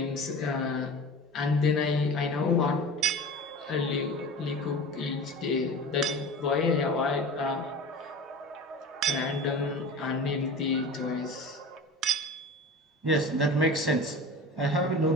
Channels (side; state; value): both; normal; correlation 0.34